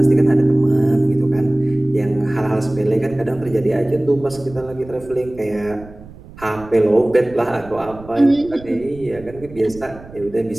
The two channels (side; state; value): right; noise; rumble, 19 dB below the sound